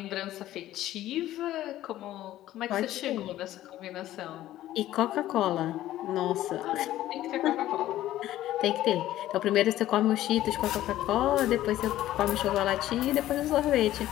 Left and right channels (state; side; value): quieter; right; 14.0 dB